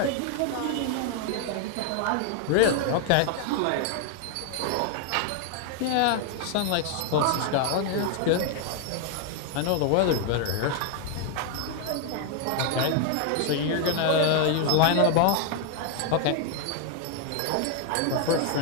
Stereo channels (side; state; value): both; different; correlation 0.00